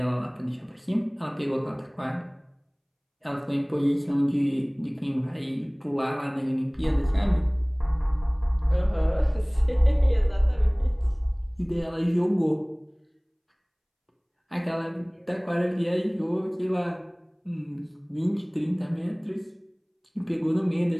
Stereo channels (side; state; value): both; identical; correlation 1.00